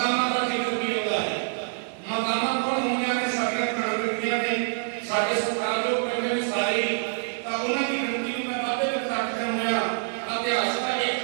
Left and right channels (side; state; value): left; silent; digital silence